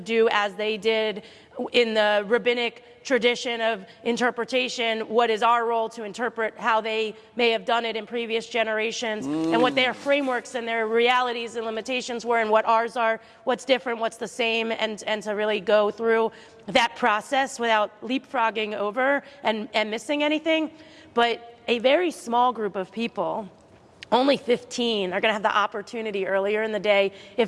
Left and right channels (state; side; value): identical; both; correlation 1.00